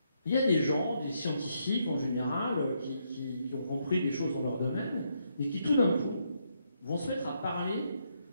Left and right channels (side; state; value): both; inverted; correlation -0.77